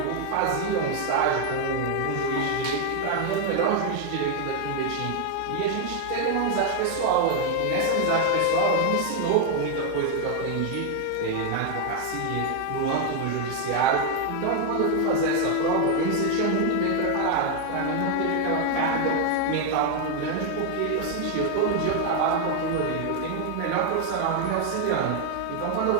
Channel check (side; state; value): both; different; correlation 0.00